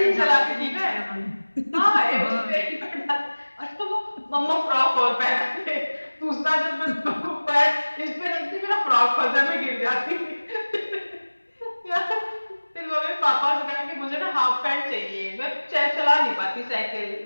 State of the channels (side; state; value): both; inverted; correlation -1.00